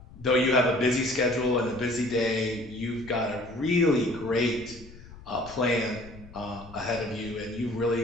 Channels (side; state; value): left; noise; rumble, 18 dB below the sound